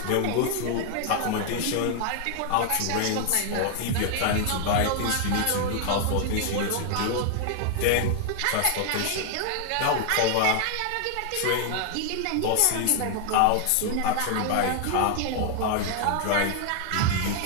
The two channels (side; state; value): both; different; correlation 0.00